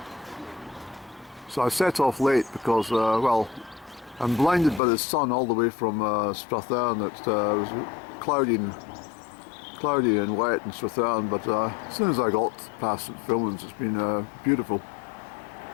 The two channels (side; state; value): right; drops out; at 4.8 s